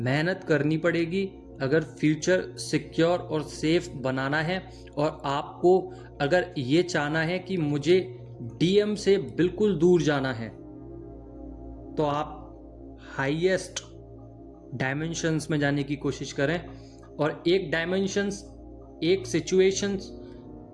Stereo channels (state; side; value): identical; both; correlation 1.00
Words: करनी पड़ेगी अगर फ्यूचर सिक्योर और सेफ बनाना है। और आपको अगर ये चाहना है कि मुझे डीएम से बिल्कुल दूर जाना है तो आप हाईएस्ट डायमेंशंस में जाने की कोशिश करें। और एक डायमेंशंस, एक सिचुएशंस